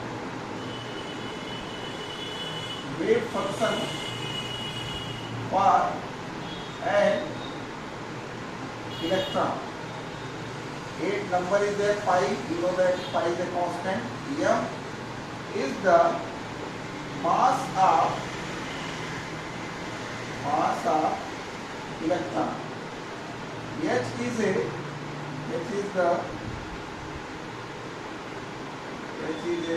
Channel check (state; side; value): identical; both; correlation 1.00